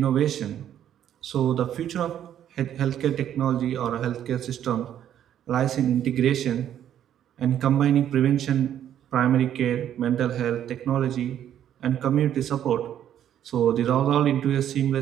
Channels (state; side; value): quieter; left; 10.4 dB